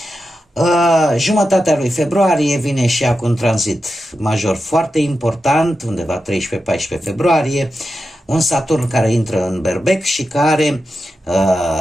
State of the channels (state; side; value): normal; both; correlation 0.90